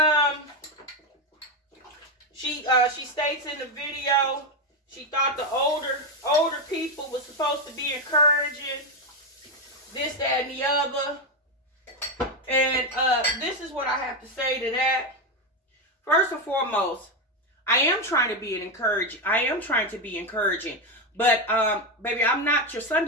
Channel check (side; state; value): both; normal; correlation 0.09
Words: she states in the video she thought the older people was supposed to be encouraging this, that, and the other. And this is what I have to say to that. First and foremost, I am trying to be encouraging. But, baby, I'm not your